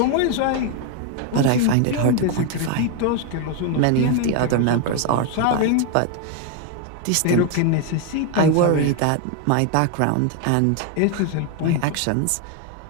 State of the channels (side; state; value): both; different; correlation 0.01